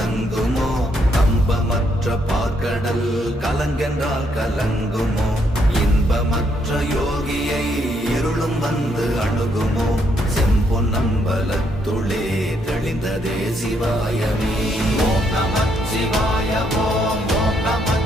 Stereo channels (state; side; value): normal; both; correlation 0.74